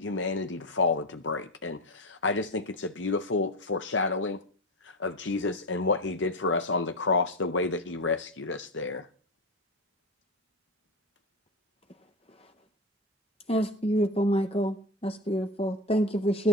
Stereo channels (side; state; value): both; normal; correlation 0.17